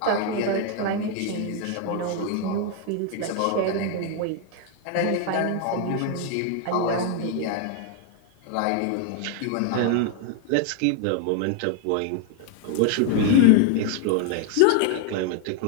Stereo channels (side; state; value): both; different; correlation 0.01